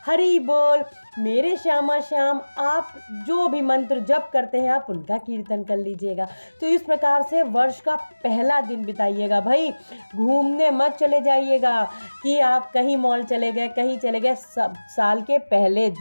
हरि बोल, मेरे श्यामा श्याम, आप जो भी मंत्र जप करते हैं आप उनका कीर्तन कर लीजिएगा। तो इस प्रकार से वर्ष का पहला दिन बिताइएगा भाई। घूमने मत चले जाइएगा कि आप कहीं मॉल चले गए, कहीं चले गए। सब साल के पहले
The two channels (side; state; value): both; inverted; correlation -1.00